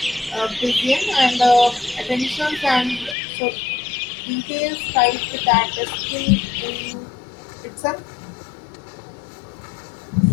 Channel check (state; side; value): drops out; right; at 3.2 s